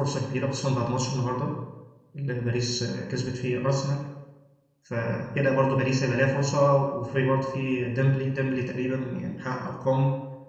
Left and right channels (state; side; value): identical; both; correlation 1.00